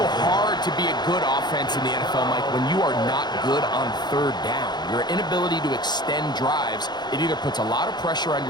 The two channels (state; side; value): late; right; 0.21 ms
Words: hard to be a good offense in the NFL, Mike, when you are not good on 3rd down. Your inability to extend drives, it either puts a lot of pressure on